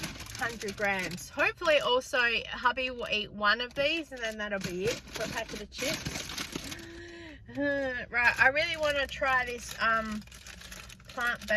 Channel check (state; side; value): identical; both; correlation 1.00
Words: 100 grams. Hopefully also hubby will eat one of these and then that'll be it for a packet of chips. Right, I really want to try this